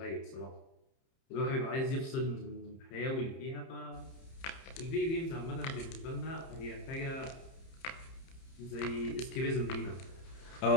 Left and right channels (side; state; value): right; late; 30 ms